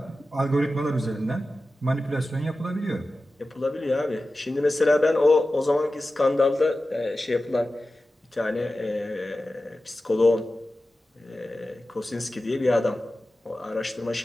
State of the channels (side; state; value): both; normal; correlation 0.94